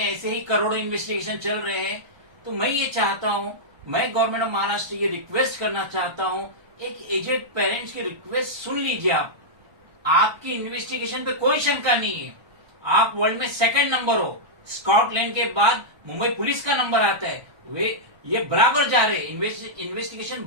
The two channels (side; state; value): left; late; 1.2 ms